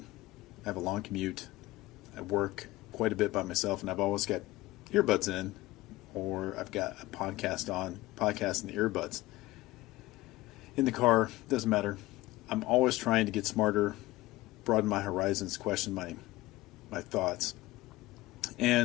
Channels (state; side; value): quieter; right; 18.6 dB